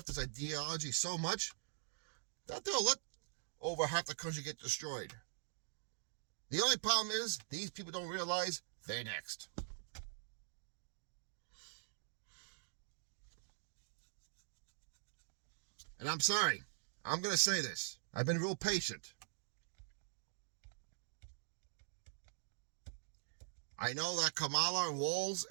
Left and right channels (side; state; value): left; silent; digital silence